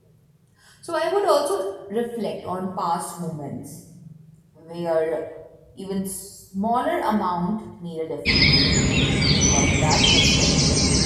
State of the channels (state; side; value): identical; both; correlation 1.00